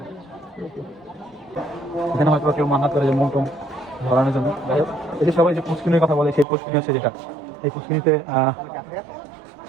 এখানে হয়তো কেউ মান্নাত করে যে মন ধরানোর জন্য। যাই হোক, এই যে সবাই যে পুষ্কিনির কথা বলে, সেই পুষ্কিনি হচ্ছে যেটা, এই পুষ্কিনিতে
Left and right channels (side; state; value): left; drops out; at 6.5 s